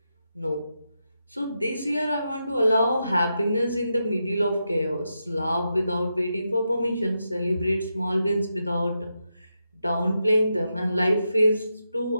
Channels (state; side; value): inverted; both; correlation -0.86